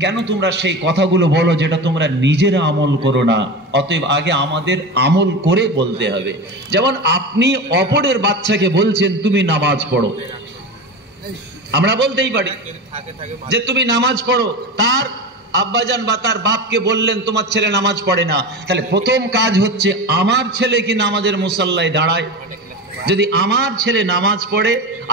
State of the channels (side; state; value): both; normal; correlation 0.25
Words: কেন তোমরা সেই কথাগুলো বলো যেটা তোমরা নিজেরা আমল করো না। অতএব আগে আমাদের আমল করে বলতে হবে। যেমন আপনি অপরের বাচ্চাকে বলছেন তুমি নামাজ পড়ো, আমরা বলতেই পারি যে তুমি নামাজ পড়ো, তার আব্বাজান বা তার বাপকে বললেন তোমার ছেলে নামাজ পড়ে না, তাহলে প্রথম কাজ হচ্ছে আমার ছেলে কি নামাজের মুসাল্লায় দাঁড়ায়। যদি আমার ছেলে নামাজ পড়ে,